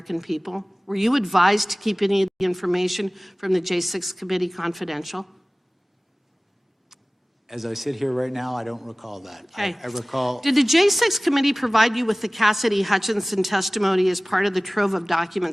people? Were you advised to keep any of the information from the J6 committee confidential? as I sit here right now, I don't recall that. Okay. I recall. Did the J6 committee provide you with the Cassidy Hutchinson testimony as part of the trove of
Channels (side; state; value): both; normal; correlation 0.98